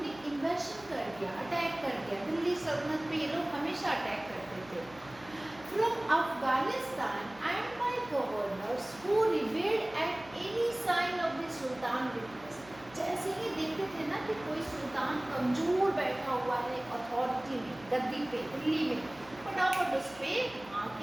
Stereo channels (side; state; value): right; noise; hum, 22 dB below the sound